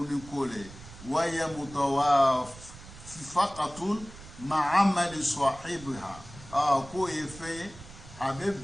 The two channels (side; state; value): right; noise; rumble, 17 dB below the sound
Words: ni kole waya mutawafaqatun ma'amal sahibiha ko e fe